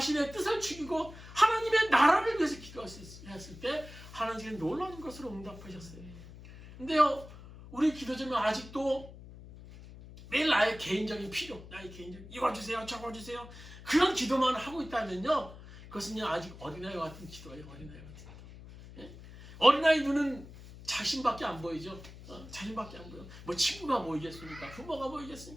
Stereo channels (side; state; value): left; noise; hum, 16 dB below the sound